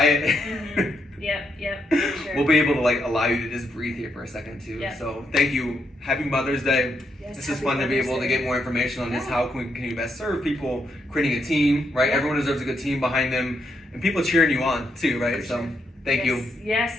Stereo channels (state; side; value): normal; both; correlation 0.79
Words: Yep. For sure. We'll be able to like allow you to just breathe here for a second too. So thank you. Happy Mother's Day. Yes, this is fun to be able to get more information on this. How can you best serve people? Creating a team, right? Everyone deserves a good team behind them, and people cheering you on too, right? So thank you. Yes,